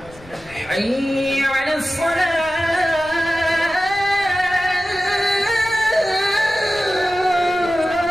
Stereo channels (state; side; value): noise; left; rumble, 22 dB below the sound